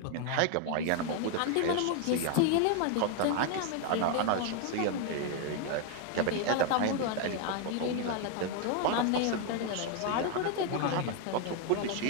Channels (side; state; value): both; different; correlation 0.01